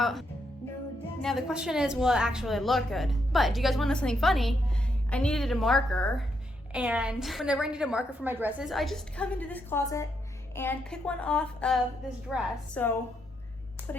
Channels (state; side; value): normal; both; correlation 0.79